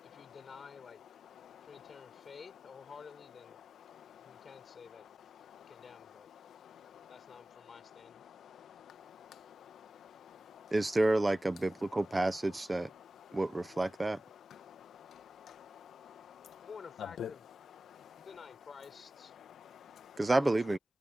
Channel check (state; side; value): normal; both; correlation 0.97